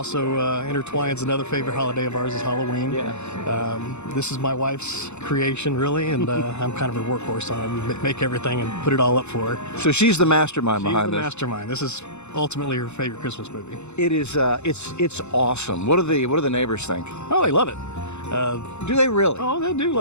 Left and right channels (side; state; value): right; late; 0.82 ms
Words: intertwines another favorite holiday of ours is Halloween. Yeah. This is my wife's creation, really, and I'm kind of her workhorse on it. Make everything and put it all up for her. So she's the mastermind She's behind the this. mastermind. This is ultimately her favorite Christmas movie. It is. It's awesome. What do the neighbors think? Oh, they love it. Do they really? Oh, they do